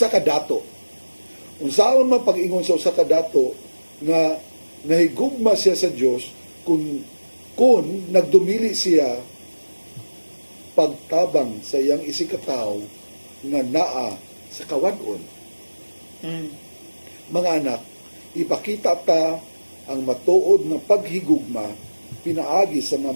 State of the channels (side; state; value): both; inverted; correlation -1.00